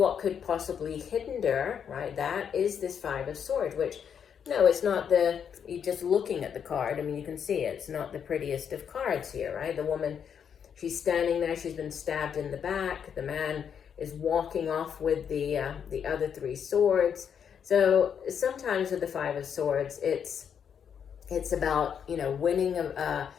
could possibly hinder, right, that is this Five of Swords, which, no, it's not you're just looking at the card. I mean, you can see it's not the prettiest of cards here, right? The woman, she's standing there, she's been stabbed in the back. The man is walking off with the other three swords. So sometimes with the Five of Swords, it's about, you know, winning a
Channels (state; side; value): quieter; right; 7.7 dB